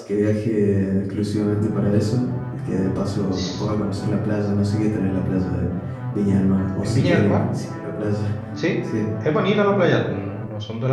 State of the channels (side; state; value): both; identical; correlation 1.00